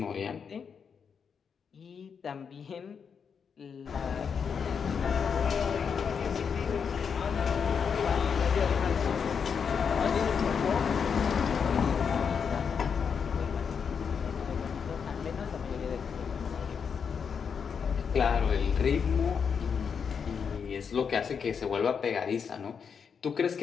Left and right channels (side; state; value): right; quieter; 6.5 dB